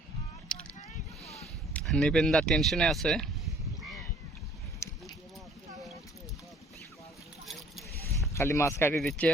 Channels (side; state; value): both; normal; correlation 0.57